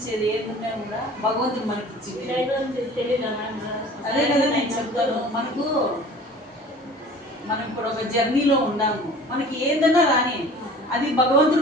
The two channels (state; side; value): normal; both; correlation 0.45